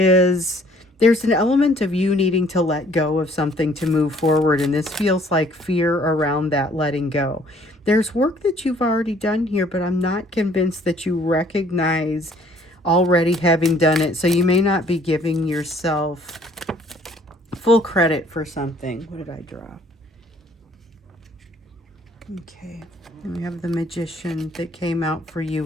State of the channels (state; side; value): normal; both; correlation 0.59